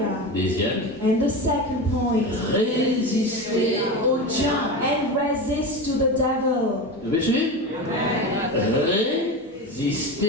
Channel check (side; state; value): both; normal; correlation 0.23